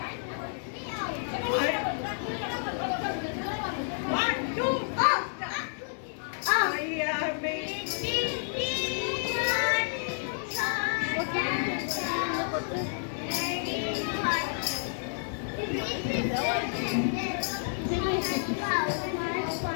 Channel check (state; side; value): silent; right; digital silence